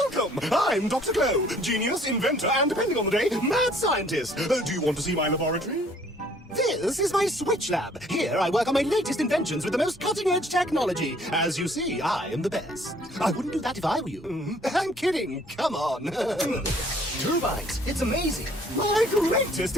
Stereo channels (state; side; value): normal; both; correlation 0.58